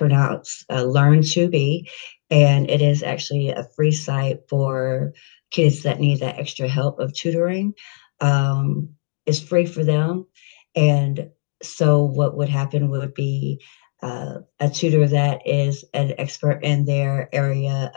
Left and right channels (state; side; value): silent; right; digital silence